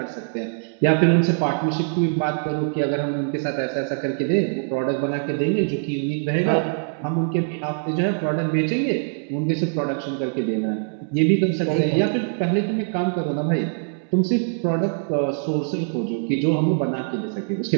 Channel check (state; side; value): silent; left; digital silence